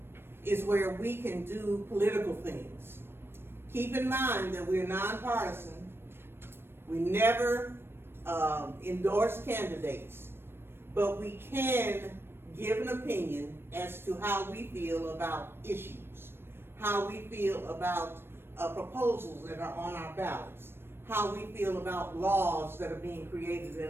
is where we can do political things. Keep in mind that we're nonpartisan. We never endorse candidates, but we can give an opinion as to how we feel about issues, how we feel about proposals that are on our ballots, how we feel about laws that are being created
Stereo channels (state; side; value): late; left; 0.11 ms